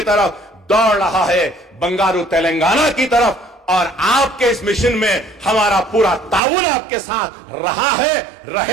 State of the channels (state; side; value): drops out; left; at 6.4 s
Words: طرف دوڑ رہا ہے, بنگارو تلنگانہ کی طرف. اور آپ کے اس مشن میں ہمارا پورا تعاون آپ کے ساتھ رہا ہے,